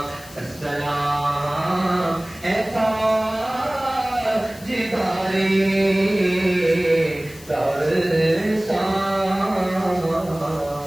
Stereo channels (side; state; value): left; noise; hiss, 20 dB below the sound